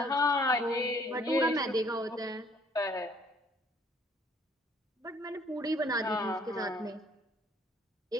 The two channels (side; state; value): both; normal; correlation 0.60